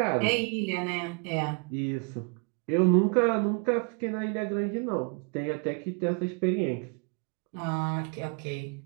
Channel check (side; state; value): left; quieter; 36.8 dB